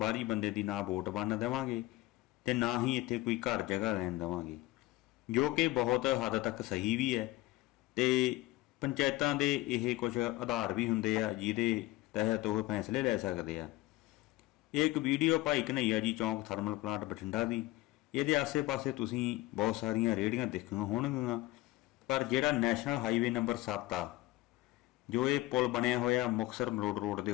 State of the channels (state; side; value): quieter; right; 18.1 dB